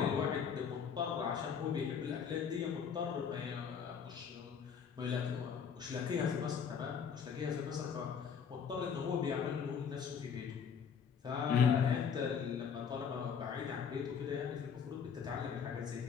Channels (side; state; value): right; quieter; 6.9 dB